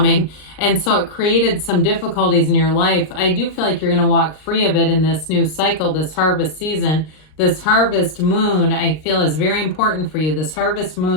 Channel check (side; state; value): right; late; 39 ms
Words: and so it created some difficulties in your life. I do feel like you're going to walk free of it in this new cycle, this harvest season. This harvest moon, I feel, is very important for you, this harvest